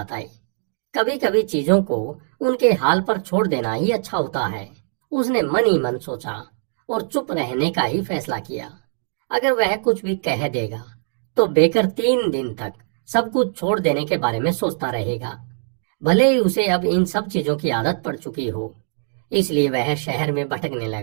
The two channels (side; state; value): left; silent; digital silence